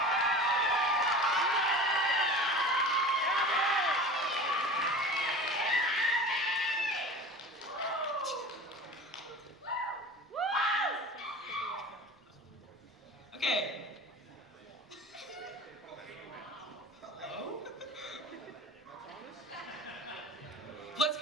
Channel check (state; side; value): normal; both; correlation 0.36